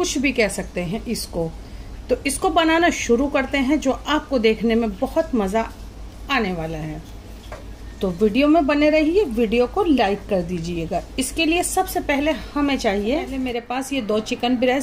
भी कह सकते हैं इसको। तो इसको बनाना शुरू करते हैं, जो आपको देखने में बहुत मज़ा आने वाला है। तो वीडियो में बने रहिए, वीडियो को लाइक कर दीजिएगा। इसके लिए सबसे पहले हमें चाहिए, मेरे पास ये 2 चिकन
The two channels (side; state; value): both; identical; correlation 1.00